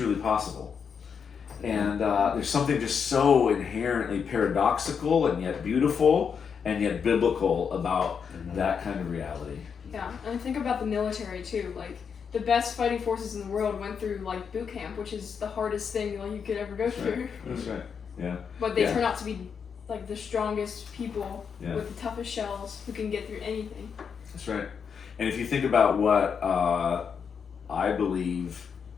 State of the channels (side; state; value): right; quieter; 6.6 dB